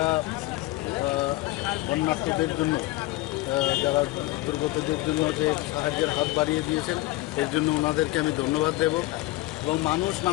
বন্যার্থদের জন্য, যারা দুর্গতদের জন্য যে সাহায্যের হাত বাড়িয়ে দিয়েছেন, এর জন্য ওনাদেরকে আমি ধন্যবাদ দেব। এবং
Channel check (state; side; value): quieter; right; 18.6 dB